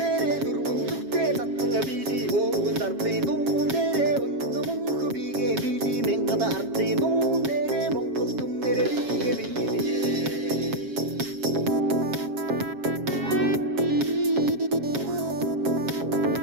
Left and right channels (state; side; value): late; left; 7.2 ms